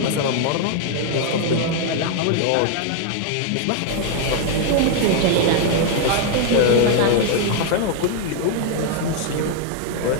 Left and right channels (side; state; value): both; different; correlation 0.00